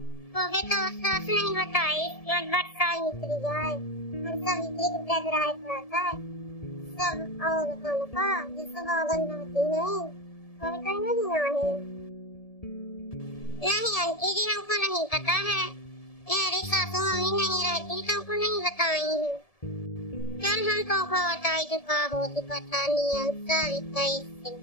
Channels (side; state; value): right; late; 1.7 ms